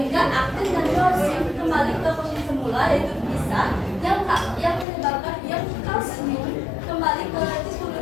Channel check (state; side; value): drops out; right; at 4.9 s